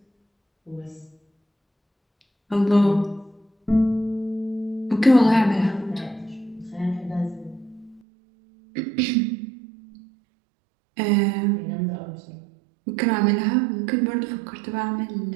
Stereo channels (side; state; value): left; drops out; at 8.0 s